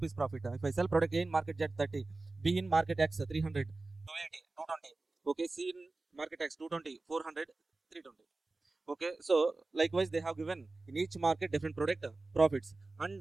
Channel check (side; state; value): left; quieter; 3.3 dB